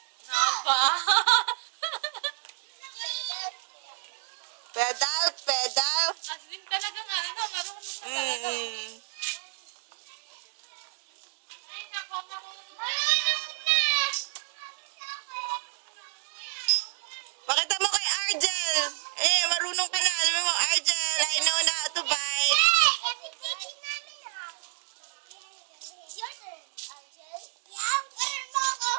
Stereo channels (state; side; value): silent; left; digital silence